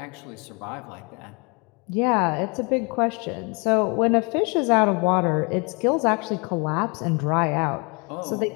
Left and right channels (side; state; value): right; quieter; 31.2 dB